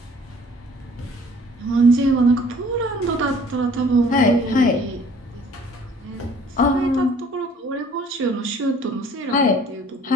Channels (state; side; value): normal; both; correlation 0.54